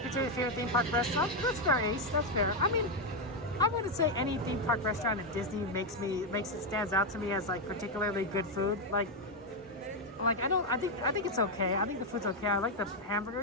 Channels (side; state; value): both; normal; correlation 0.04